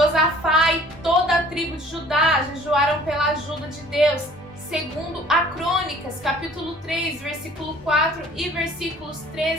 e toda a tribo de Judá jejuaram pela ajuda de Deus, segundo a Crônicas, capítulo 3, versículo 4 e versículos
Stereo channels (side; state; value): both; normal; correlation 0.52